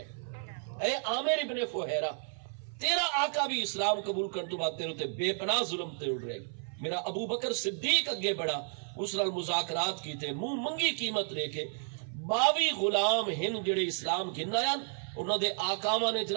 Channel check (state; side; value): silent; left; 56 dB below the other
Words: اے عامر ابن فہیرہ، تیرا آقا بھی اسلام قبول کرنے تو بعد تیرے تے بے پناہ ظلم تے اڑ رہی، میرا ابو بکر صدیق اگے بڑا، اس نال مذاکرات کیتے، منہ منگی قیمت لے کے 22 غلام ہن جڑے اسلام گھن آیا، انہوں دے آقاواں نے